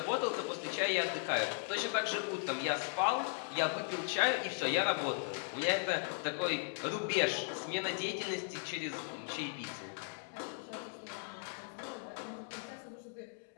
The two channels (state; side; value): silent; right; 53 dB below the other